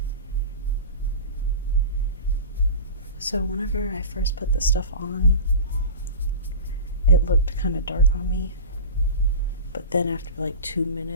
So whenever I first put this stuff on, it looked kind of dark on me. But then after like 2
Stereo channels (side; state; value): both; inverted; correlation -0.31